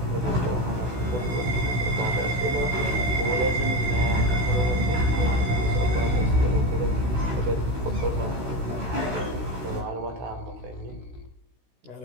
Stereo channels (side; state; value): left; late; 16 ms